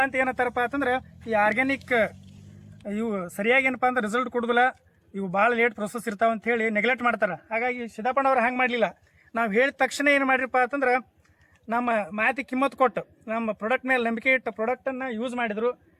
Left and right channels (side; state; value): both; identical; correlation 1.00